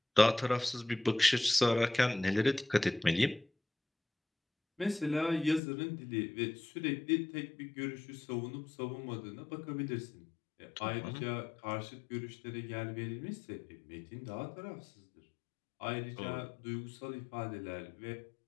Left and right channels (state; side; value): drops out; right; at 5.6 s